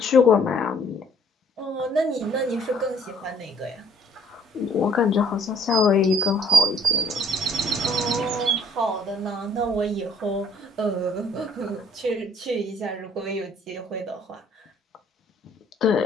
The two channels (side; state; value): both; normal; correlation 0.61